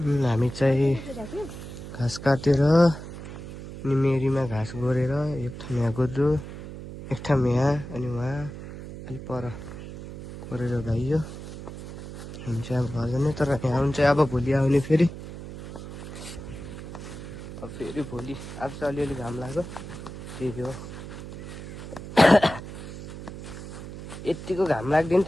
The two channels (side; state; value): right; noise; hum, 11 dB below the sound